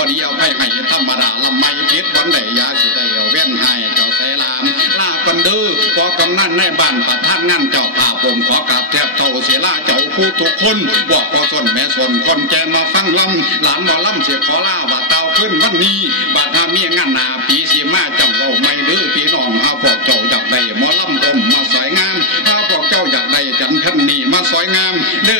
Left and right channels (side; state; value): both; normal; correlation -0.06